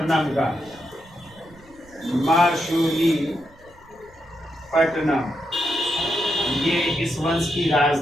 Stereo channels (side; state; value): right; noise; rumble, 27 dB below the sound